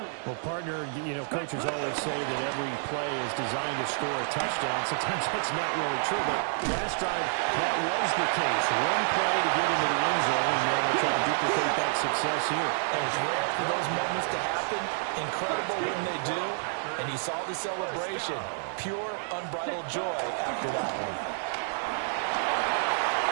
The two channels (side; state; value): left; silent; 59 dB below the other